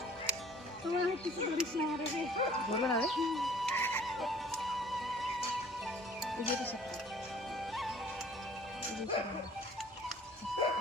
তোমার কিছু ধরিস না রে, ধরবে না রে। এই যে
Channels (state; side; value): normal; both; correlation 0.53